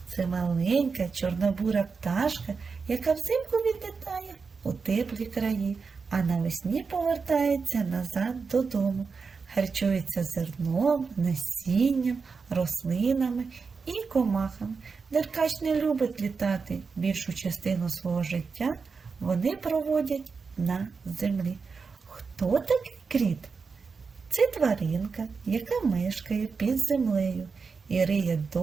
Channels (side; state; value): left; quieter; 5.0 dB